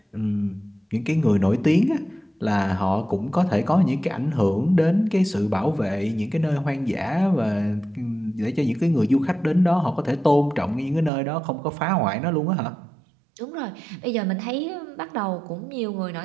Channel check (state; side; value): drops out; left; at 11.1 s